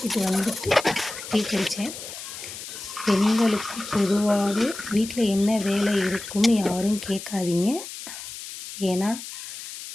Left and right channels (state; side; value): noise; left; hiss, 11 dB below the sound